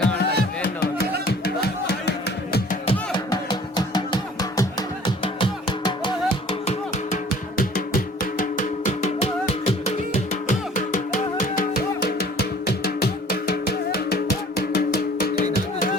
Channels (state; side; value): normal; both; correlation 0.51